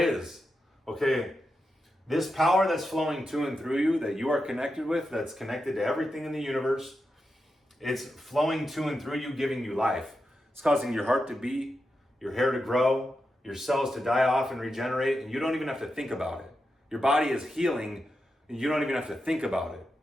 Okay, this power that's flowing to and through you, that you are connected with, that's connected to everything in the universe, it's flowing to and through you, giving you life. It's causing your heart to beat, your hair to grow, your cells to die off and regenerate, and you don't even have to think about it. Your body is healing, and you don't even have to think about it.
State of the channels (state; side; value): normal; both; correlation 0.88